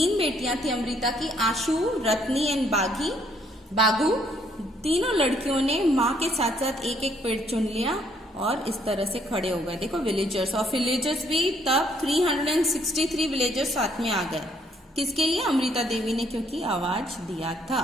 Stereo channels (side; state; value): both; normal; correlation 0.68